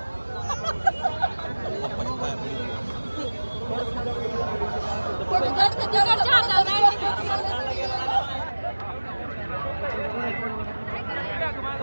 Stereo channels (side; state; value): both; inverted; correlation -1.00